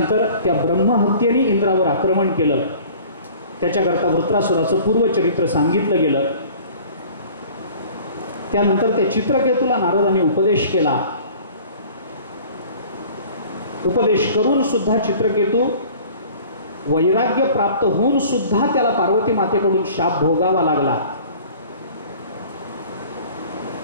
त्या ब्रह्महत्येने इंद्रावर आक्रमण केलं. त्याच्याकरता वृत्रासुराचं पूर्वचरित्र सांगितलं गेलं. त्यानंतर त्या चित्रकेतूला नारदांनी उपदेश केला. उपदेश करून सुद्धा चित्रकेतू वैराग्य प्राप्त होऊन सुद्धा त्याला पार्वती मातेकडून शाप भोगावा लागला.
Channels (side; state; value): both; inverted; correlation -0.47